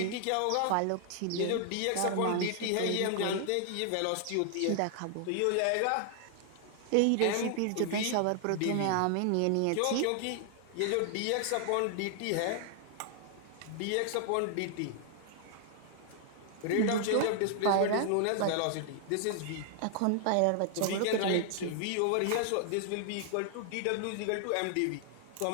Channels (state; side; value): different; both; correlation 0.00